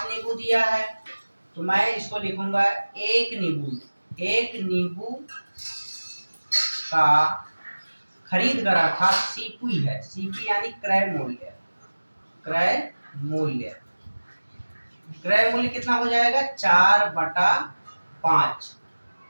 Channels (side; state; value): both; inverted; correlation -1.00